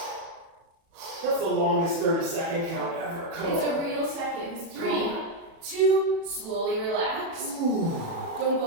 That's the longest 30-second count ever. Come It's on. a real second. 3, 2, slowly relax. Don't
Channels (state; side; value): late; left; 36 ms